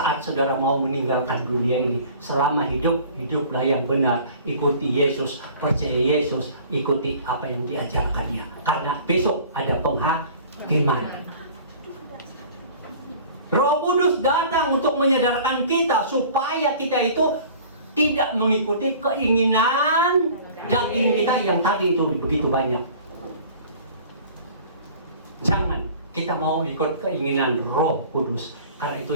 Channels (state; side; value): inverted; both; correlation -0.47